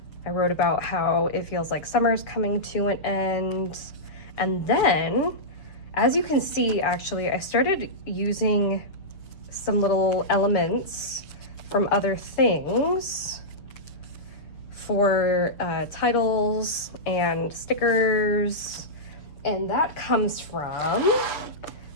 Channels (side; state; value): right; late; 7.1 ms